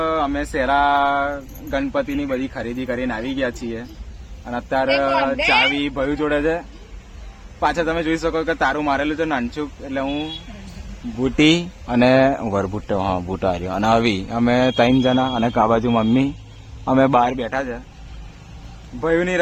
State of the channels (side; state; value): both; identical; correlation 1.00